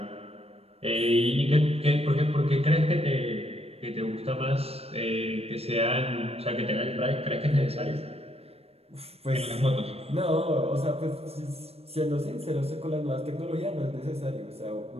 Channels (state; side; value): late; left; 0.29 ms